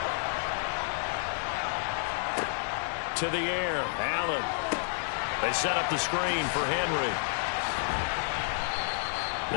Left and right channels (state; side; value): silent; right; 58 dB below the other